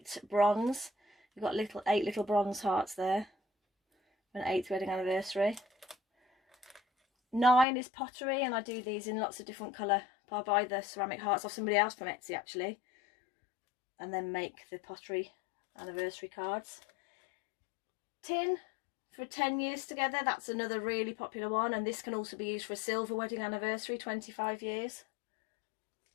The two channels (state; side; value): drops out; right; at 7.7 s